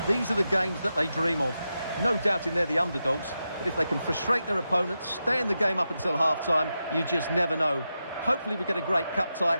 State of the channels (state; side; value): inverted; both; correlation -0.89